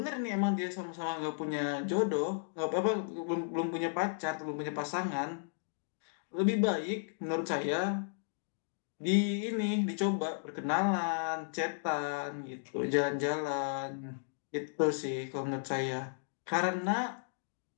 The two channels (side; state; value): right; silent; digital silence